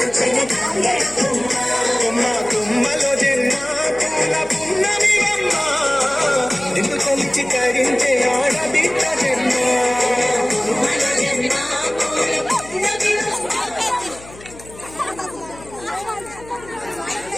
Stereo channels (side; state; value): left; noise; hum, 19 dB below the sound